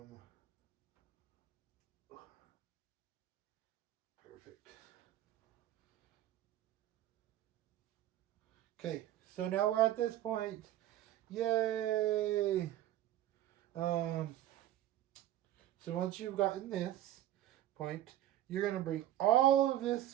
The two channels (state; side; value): quieter; left; 13.0 dB